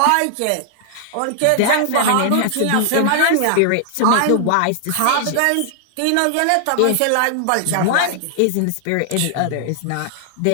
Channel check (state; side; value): different; both; correlation -0.01